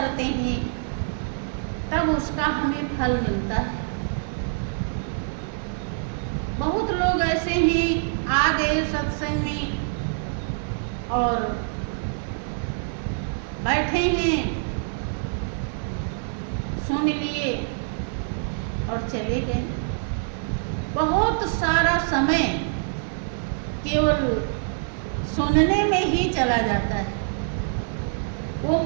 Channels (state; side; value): silent; left; digital silence